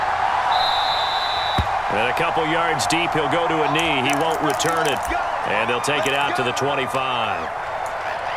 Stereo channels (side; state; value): both; identical; correlation 1.00